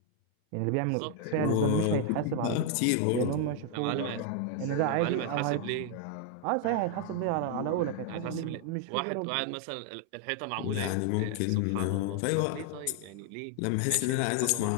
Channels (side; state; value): both; different; correlation 0.00